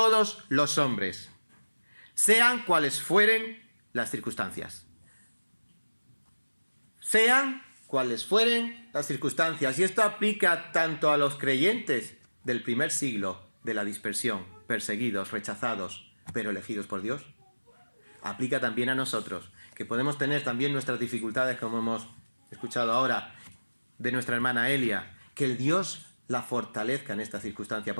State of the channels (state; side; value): inverted; both; correlation -1.00